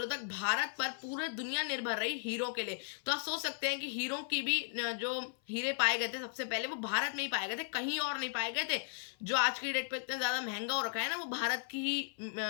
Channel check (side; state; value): right; silent; 54 dB below the other